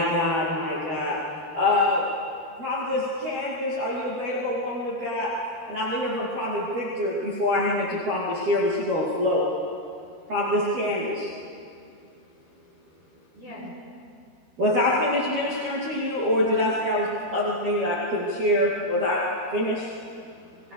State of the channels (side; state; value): left; late; 13 ms